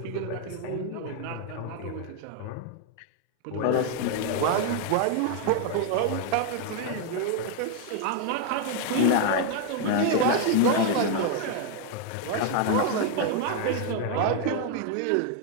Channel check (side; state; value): both; different; correlation 0.00